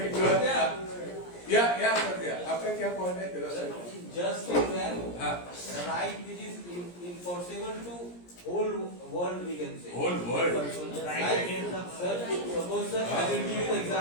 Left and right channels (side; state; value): right; late; 17 ms